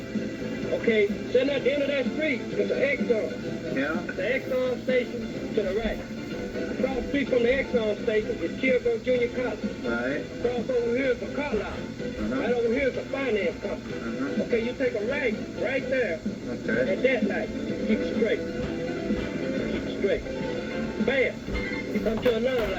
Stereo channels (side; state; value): both; identical; correlation 1.00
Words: Okay, then at the end of that street, there's an Exxon. Yeah. The Exxon station to the right. Across the street from the Exxon station is Kilgore Junior College. Right. Across over here is the car lot. Right over here is the finance company. Okay, you take a right there. Okay. At that light. Keep it straight. Keep it straight. Bam. You come to another